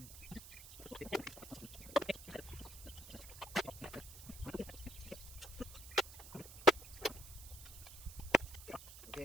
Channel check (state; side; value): noise; right; hiss, 14 dB below the sound